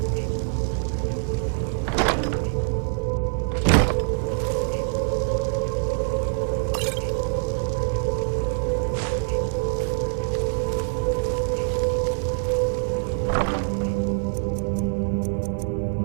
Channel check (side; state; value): left; silent; digital silence